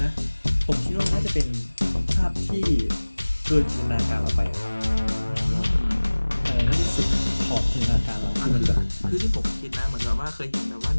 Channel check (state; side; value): inverted; both; correlation -1.00